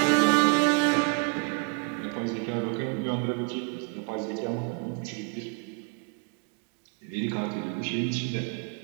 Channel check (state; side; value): quieter; left; 34.1 dB